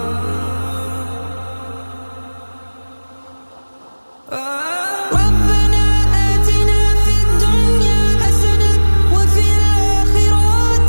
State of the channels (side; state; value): both; inverted; correlation -1.00